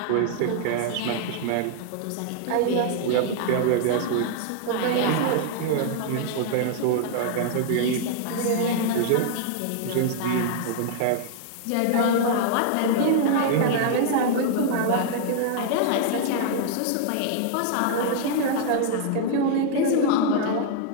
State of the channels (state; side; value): different; both; correlation -0.01